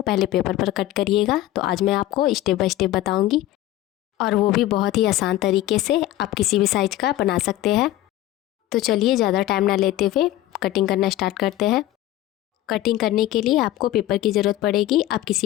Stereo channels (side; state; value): right; quieter; 14.9 dB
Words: पहले पेपर पर कट करिएगा। तो आज मैं आपको स्टेप बाय स्टेप बताऊंगी, और वो भी बहुत ही आसान तरीके से। आप किसी भी साइज का बना सकते हैं। तो चलिए ज़्यादा टाइम ना लेते हुए कटिंग करना स्टार्ट करते हैं। कटिंग करने के लिए आपको पेपर की ज़रूरत पड़ेगी। आप